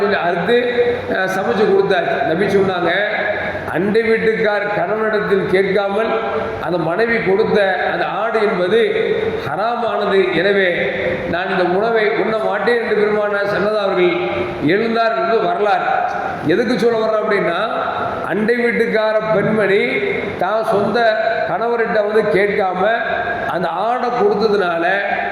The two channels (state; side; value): identical; both; correlation 1.00